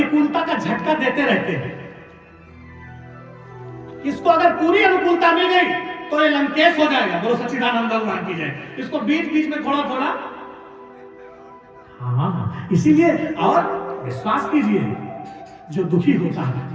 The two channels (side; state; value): both; identical; correlation 1.00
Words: का झटका देते रहते हैं। इसको अगर पूरी अनुकूलता मिल गई तो ये लंकेश हो जाएगा, बोलो सच्चिदानंद भगवान की जय। इसको बीच बीच में थोड़ा थोड़ा, हाँ, इसीलिए और विश्वास कीजिए जो दुखी होता है,